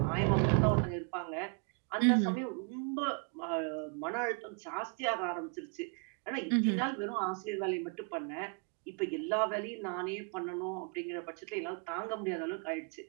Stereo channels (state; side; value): quieter; left; 38.0 dB